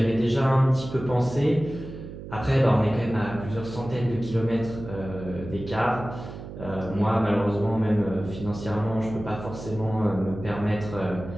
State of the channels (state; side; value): noise; right; hum, 11 dB below the sound